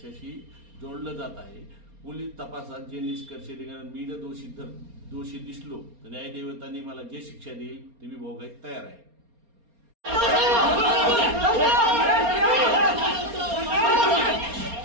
जोडलं जात आहे। पोलीस तपासात जे निष्कर्ष निघाले, मी जर दोषी दिसलो तर न्यायदेवतांनी मला जे शिक्षा देईल ती मी भोगायला तयार आहे।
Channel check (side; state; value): left; late; 4.3 ms